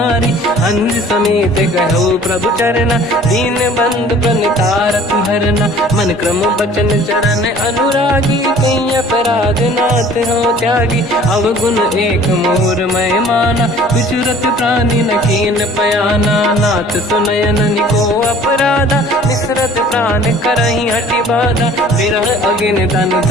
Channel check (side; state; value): both; normal; correlation 0.50